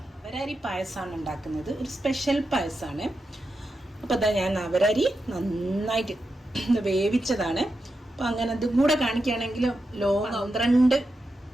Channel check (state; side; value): normal; both; correlation 0.88